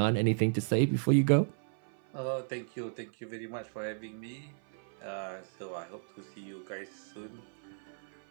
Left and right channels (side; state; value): left; silent; 55 dB below the other